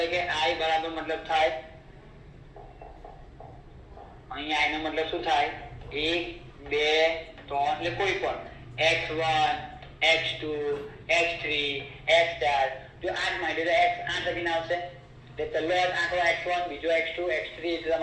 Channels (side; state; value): both; identical; correlation 1.00